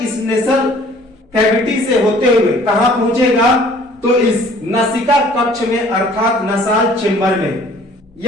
इस नेसल कैविटी से होते हुए कहां पहुंचेगा, तो इस नसिका कक्ष में अर्थात नसाल चेंबर में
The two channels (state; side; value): normal; both; correlation 0.54